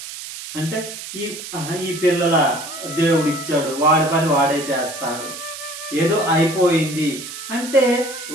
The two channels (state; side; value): noise; right; hiss, 10 dB below the sound